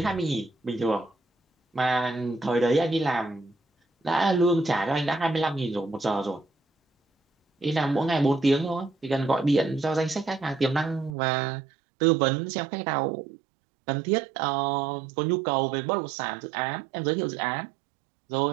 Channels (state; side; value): drops out; left; at 11.1 s